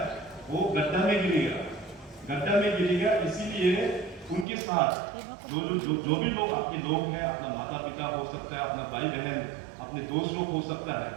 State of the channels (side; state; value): left; drops out; at 4.5 s